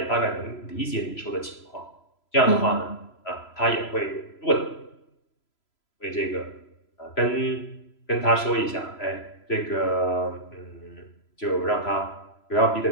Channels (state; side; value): late; right; 3.0 ms